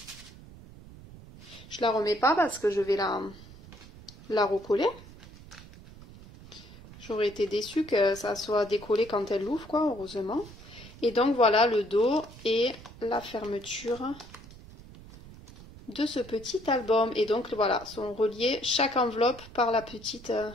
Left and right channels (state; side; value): noise; right; rumble, 18 dB below the sound